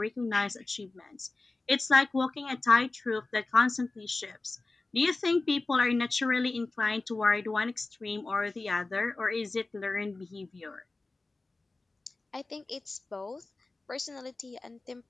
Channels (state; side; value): quieter; right; 3.3 dB